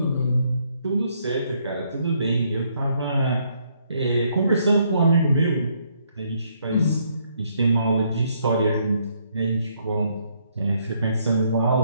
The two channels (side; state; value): both; inverted; correlation -0.71